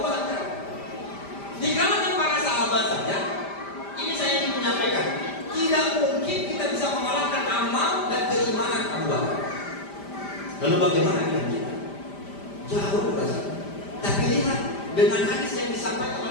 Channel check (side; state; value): right; late; 5.0 ms